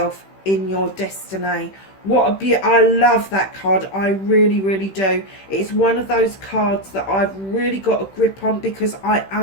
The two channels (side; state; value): right; late; 15 ms